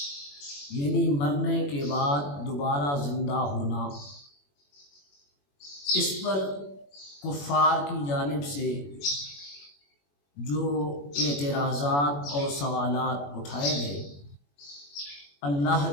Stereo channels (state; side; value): late; right; 21 ms